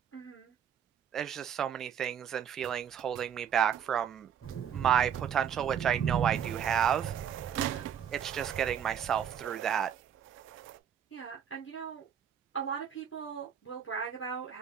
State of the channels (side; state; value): left; quieter; 8.7 dB